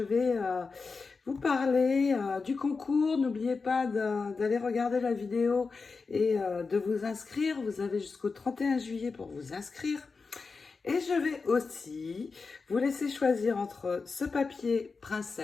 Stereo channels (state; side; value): quieter; right; 4.5 dB